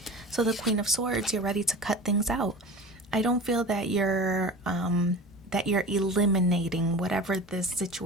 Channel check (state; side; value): normal; both; correlation 0.34